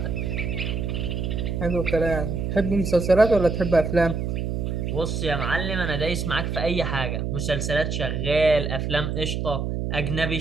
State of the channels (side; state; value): right; noise; hum, 2 dB below the sound